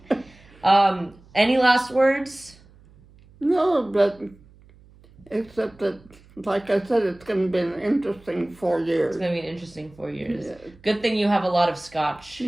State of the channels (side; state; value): right; noise; hum, 26 dB below the sound